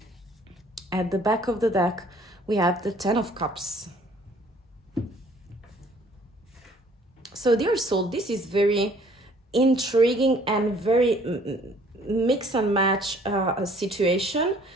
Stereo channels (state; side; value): normal; both; correlation 0.58